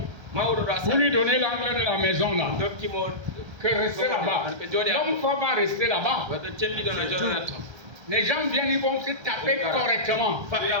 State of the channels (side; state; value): left; late; 1.3 ms